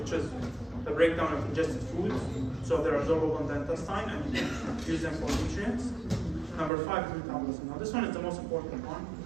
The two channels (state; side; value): drops out; left; at 6.7 s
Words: which is the breakdown of ingested foods. So they're absorbable in the intestine and you can use them for nutrients. Number 5 is metabolism. Now this one is the most important one.